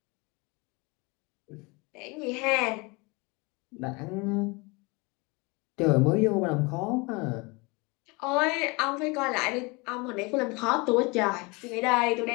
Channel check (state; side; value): quieter; right; 27.3 dB